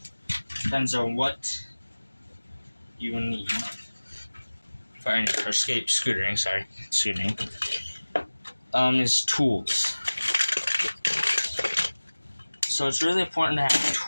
Depends on what you need for scootering. Is tools. So it's really important to have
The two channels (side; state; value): both; inverted; correlation -1.00